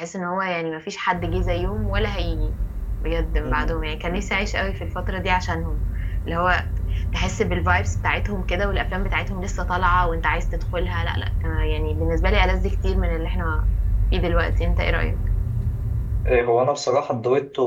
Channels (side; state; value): both; identical; correlation 1.00